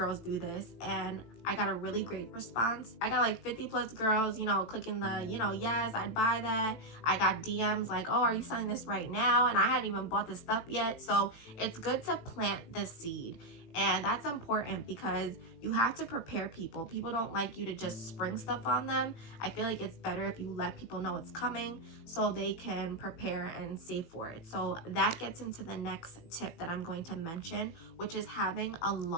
do this and I got a really great response. I got like 50 plus girls, you know, clicking the, you know, yes, I'd buy that. I got DMs like, oh, are you selling this right now? And I hadn't even bought the stuff yet. So it's good to plant the seed. And that's important because you have to prepare people. People don't like you to just spring stuff on them. I feel like it's better if you let people know it's coming so they can prepare and save for it. So that gets into the next tip that I'm going to mention, which is having a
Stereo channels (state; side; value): late; right; 18 ms